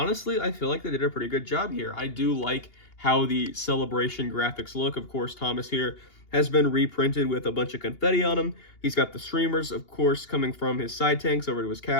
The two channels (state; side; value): late; right; 2.8 ms